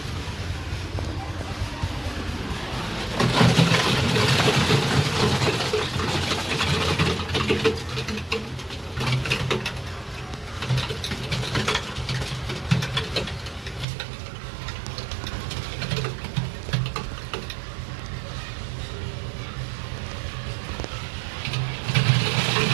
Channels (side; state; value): left; drops out; at 13.9 s